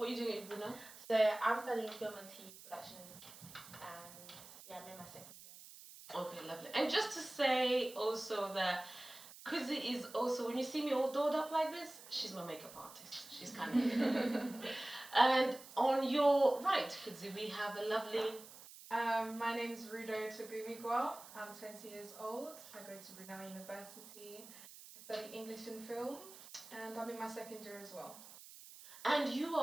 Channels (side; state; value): right; noise; hiss, 17 dB below the sound